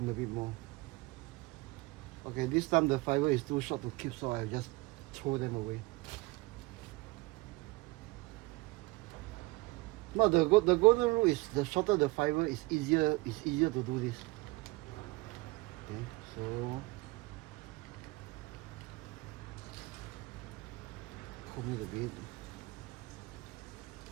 a bit more. Okay, this time the fiber is too short to keep, so I just throw them away. No, the golden rule is the shorter the fiber is easier to do this. Okay, so comb it a bit.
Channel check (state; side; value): quieter; left; 22.3 dB